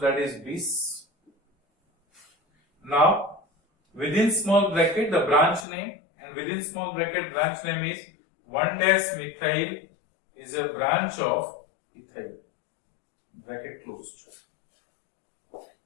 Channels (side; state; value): right; drops out; at 5.7 s